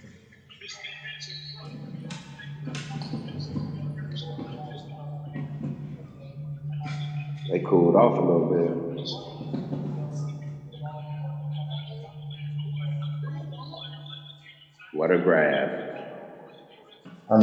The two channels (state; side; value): identical; both; correlation 1.00